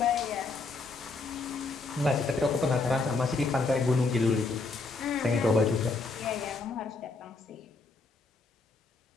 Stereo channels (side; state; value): right; quieter; 3.7 dB